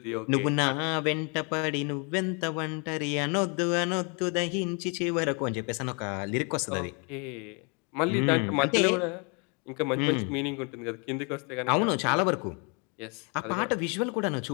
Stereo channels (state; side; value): quieter; right; 35.4 dB